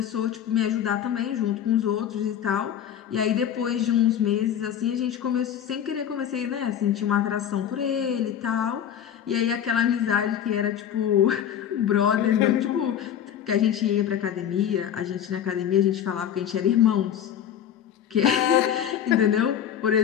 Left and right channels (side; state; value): right; quieter; 9.5 dB